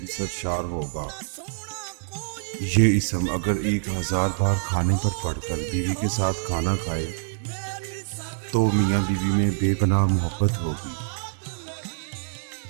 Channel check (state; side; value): silent; left; digital silence